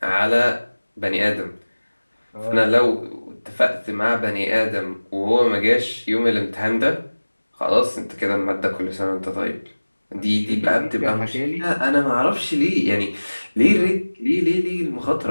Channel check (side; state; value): both; inverted; correlation -1.00